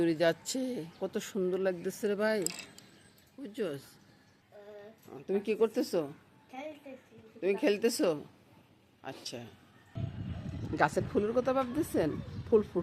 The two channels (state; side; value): identical; both; correlation 1.00